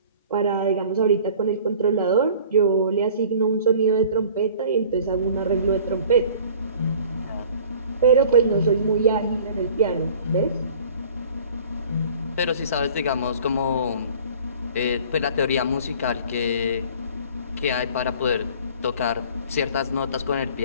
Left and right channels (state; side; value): inverted; both; correlation -0.48